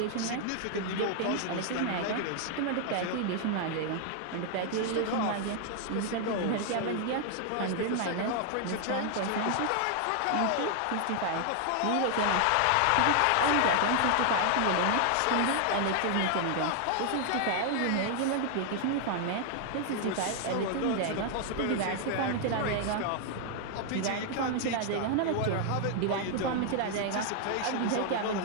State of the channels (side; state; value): both; different; correlation 0.00